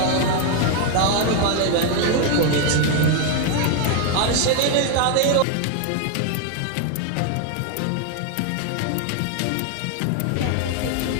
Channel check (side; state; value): both; different; correlation 0.01